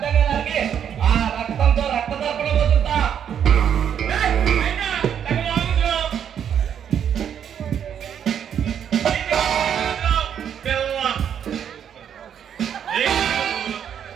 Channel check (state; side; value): quieter; left; 8.7 dB